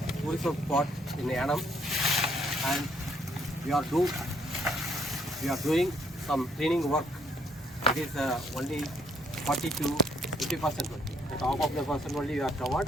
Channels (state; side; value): normal; both; correlation 0.67